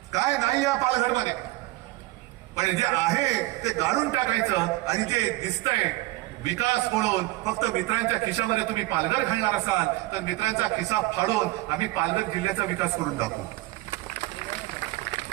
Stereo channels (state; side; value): quieter; left; 19.9 dB